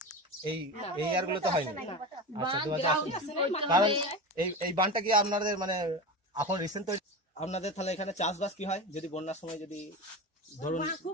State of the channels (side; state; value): both; normal; correlation 0.25